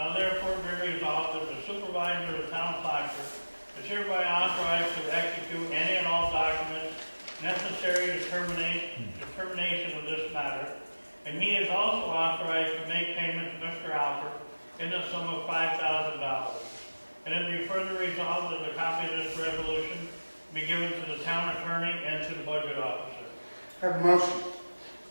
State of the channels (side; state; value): both; inverted; correlation -1.00